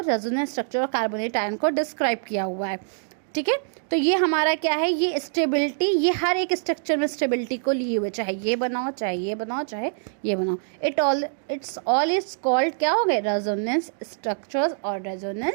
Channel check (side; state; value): left; silent; digital silence